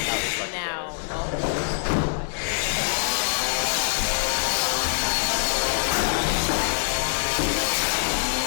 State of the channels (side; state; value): right; silent; digital silence